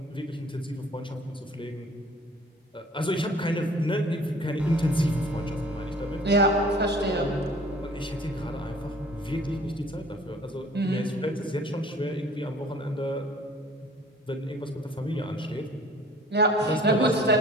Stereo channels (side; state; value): both; normal; correlation 0.51